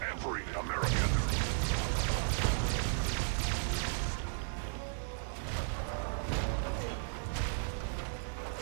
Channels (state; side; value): silent; left; digital silence